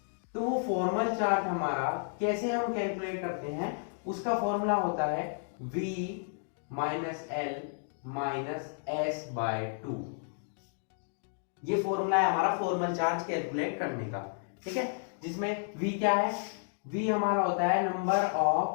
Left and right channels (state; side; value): silent; right; digital silence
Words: तो वो फॉर्मल चार्ज हमारा कैसे हम कैलकुलेट करते हैं, उसका फॉर्मूला होता है V minus L minus S/2। ये फॉर्मूला है हमारा फॉर्मल चार्ज कैलकुलेट करने का, ठीक है। जिसमें V क्या है? V हमारा होता है number of